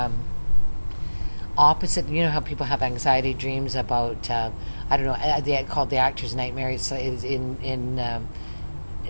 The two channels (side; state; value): both; inverted; correlation -1.00